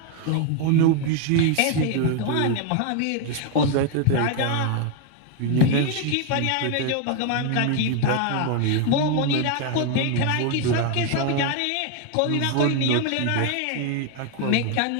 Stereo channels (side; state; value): both; different; correlation 0.01